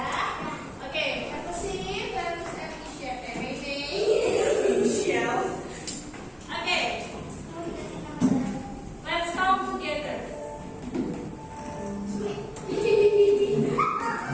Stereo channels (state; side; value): identical; both; correlation 1.00